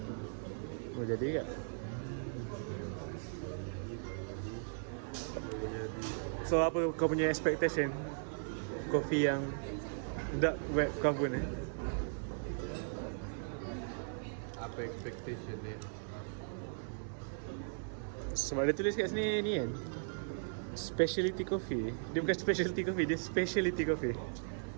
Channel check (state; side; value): silent; left; digital silence